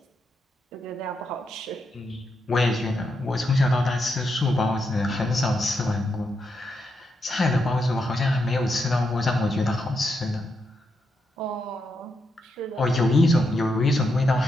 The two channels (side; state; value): both; normal; correlation 0.83